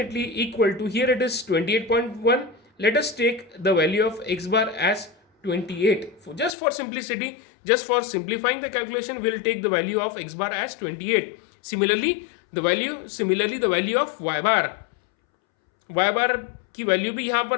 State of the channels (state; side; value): drops out; right; at 6.5 s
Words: equal to, here it is 28.1. Let us take the value of x bar as 28. Just for simplicity, just for simplifying the calculation, we'll take the value of x bar as 28. Similarly the value of y bar की value भी यहाँ